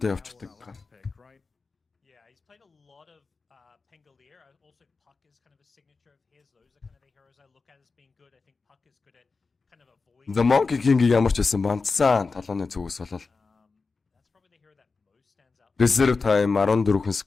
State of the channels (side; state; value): right; quieter; 4.3 dB